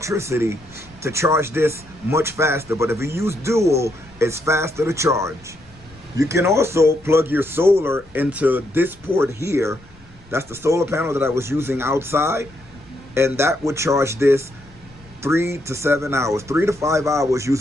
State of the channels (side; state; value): left; noise; rumble, 25 dB below the sound